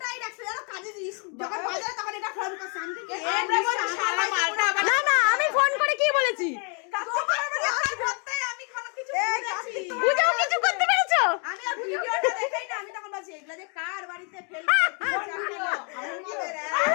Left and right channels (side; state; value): right; quieter; 37.3 dB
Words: রাখছে জানো কাজে দিস যখন বাজারে তখন এটা ফোন করছে আমি কি না না আমি ফোন করে কি বলেছি? আমি কোনো কিছু বুঝেছি বুঝাও কিছু করতে পেরেছো? আমি আর ভিডিওটা দেখাই না আমি তখন বলছি এগুলা যে কার বাড়িতে ফেলবে